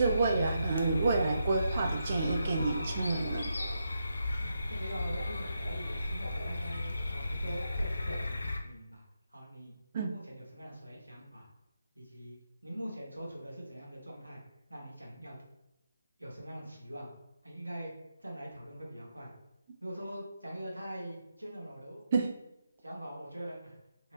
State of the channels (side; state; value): both; inverted; correlation -0.83